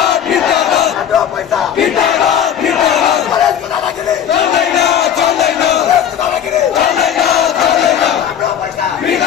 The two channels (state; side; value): quieter; right; 9.3 dB